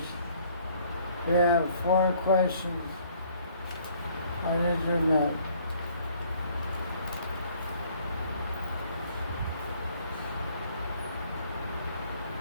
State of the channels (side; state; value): both; inverted; correlation -0.60